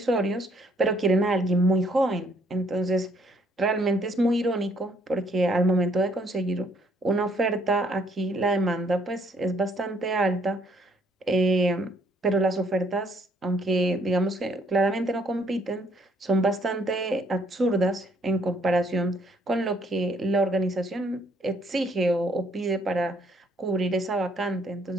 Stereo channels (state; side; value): normal; both; correlation 0.66